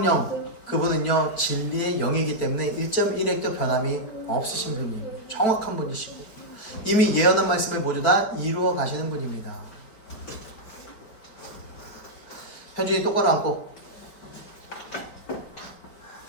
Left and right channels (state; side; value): late; right; 5.0 ms